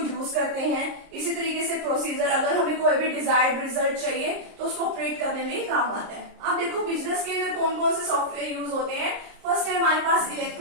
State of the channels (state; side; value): late; left; 30 ms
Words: करते हैं। इसी तरीके से प्रोसीजर, अगर हमें कोई भी डिजायर्ड रिजल्ट चाहिए तो उसको ऑपरेट करने में काम आता है। अब देखो बिजनेस के अंदर कौन कौन से सॉफ्टवेयर यूज होते हैं। फर्स्ट है हमारे पास